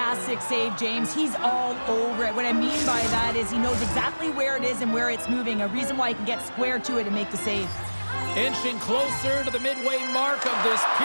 save, James. He's all over it. What I mean by that is he knows exactly where it is and where it's moving. A reason why he can get square to it and make the save. Inching closer to the midway mark of this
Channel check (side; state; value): both; inverted; correlation -1.00